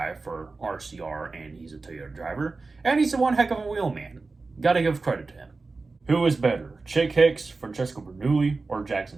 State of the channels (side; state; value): left; quieter; 3.8 dB